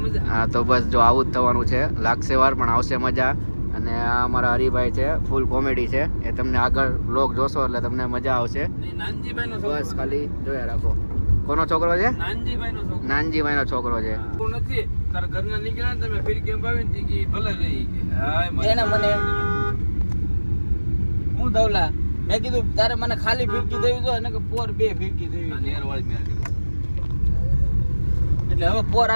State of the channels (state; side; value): inverted; both; correlation -1.00